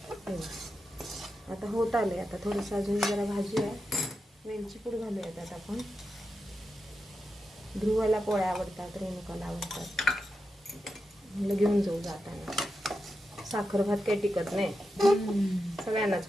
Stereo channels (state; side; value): normal; both; correlation 0.88